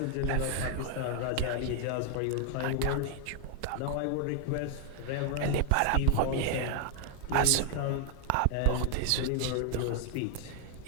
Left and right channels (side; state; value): both; different; correlation 0.00